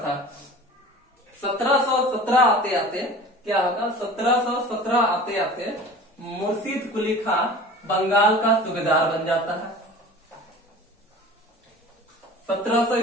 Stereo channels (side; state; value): both; normal; correlation 0.40